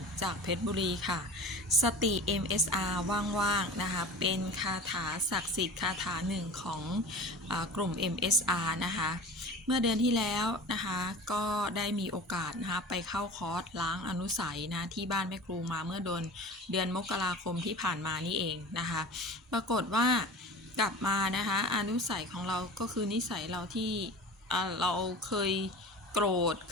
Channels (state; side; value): normal; both; correlation 0.36